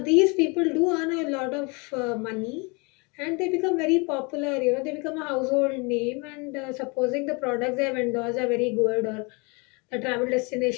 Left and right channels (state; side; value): quieter; right; 30.1 dB